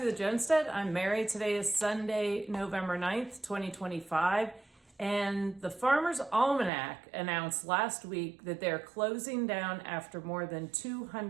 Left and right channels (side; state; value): left; drops out; at 6.7 s